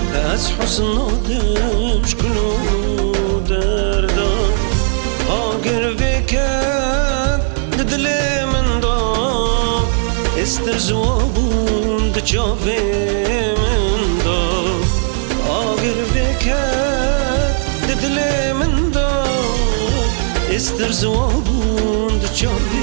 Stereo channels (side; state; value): left; silent; digital silence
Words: از حسن آدم شکلو دردا. آگر وکد دل من داد، استر زوابون دچاوه من داد. آگر وکد دل من داد، استر زوابون